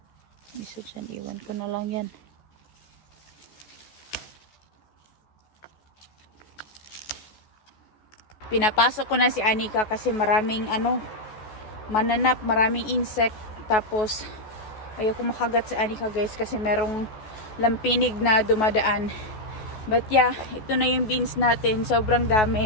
Isa dyan, iwan ko na lang yan. Pinapasok ko na si Anika kasi maraming mananap, maraming insect. Tapos ayoko makagat si Anika, guys, kasi merong lampinig na dumadaan. But yeah, ito na yung beans natin. Sobrang dami.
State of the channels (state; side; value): late; right; 14 ms